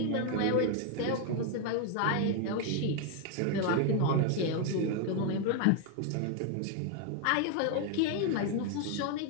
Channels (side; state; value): both; different; correlation 0.01